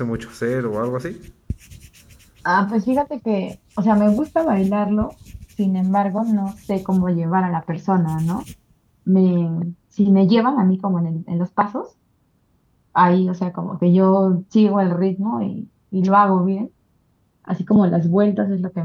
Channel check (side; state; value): both; identical; correlation 1.00